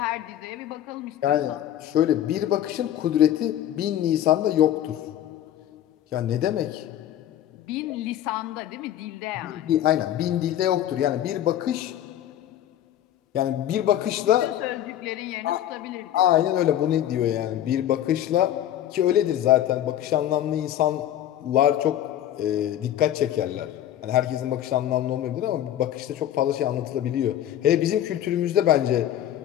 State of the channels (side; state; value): right; quieter; 11.7 dB